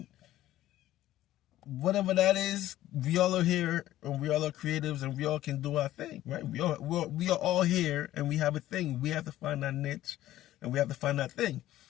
whatever that is, we all are here, and we all are creatives, and we all can do our thing, right? We are all here, and we have a thing. We have to find our niche, and we have to find our thing.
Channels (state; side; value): quieter; right; 14.2 dB